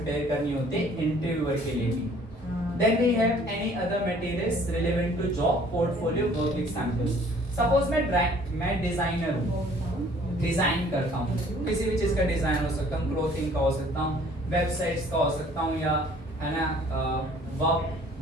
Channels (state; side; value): normal; both; correlation 0.56